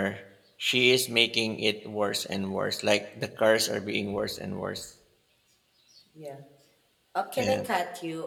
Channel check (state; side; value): identical; both; correlation 1.00